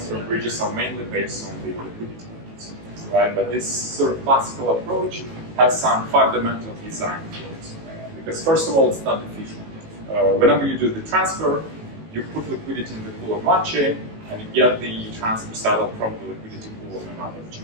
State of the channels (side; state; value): left; late; 18 ms